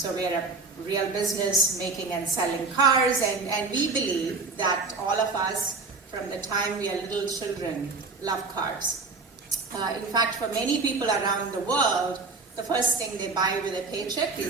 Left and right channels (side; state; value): left; quieter; 4.0 dB